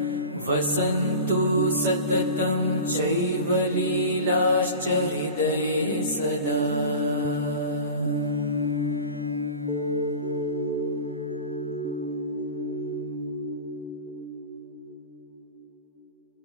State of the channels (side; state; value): both; inverted; correlation -0.34